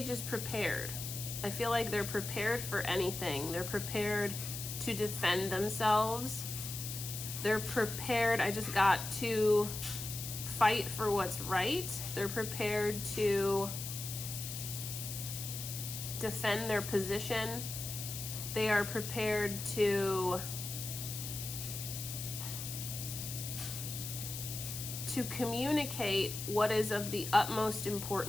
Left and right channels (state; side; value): noise; left; hiss, 6 dB below the sound